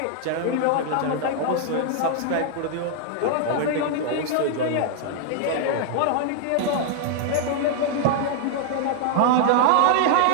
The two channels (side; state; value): both; different; correlation -0.01